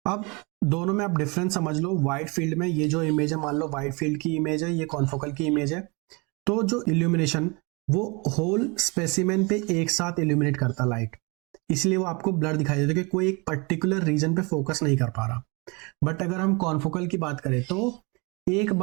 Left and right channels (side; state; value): left; quieter; 28.7 dB